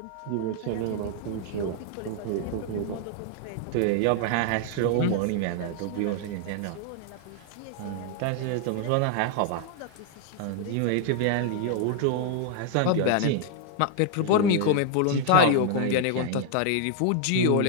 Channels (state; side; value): different; both; correlation 0.00